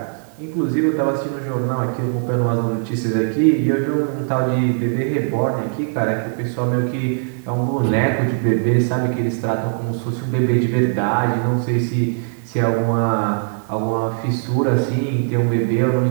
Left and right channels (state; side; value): silent; left; 66 dB below the other